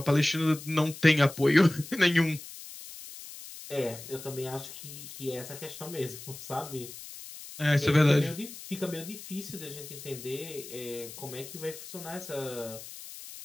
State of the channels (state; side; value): noise; left; hiss, 13 dB below the sound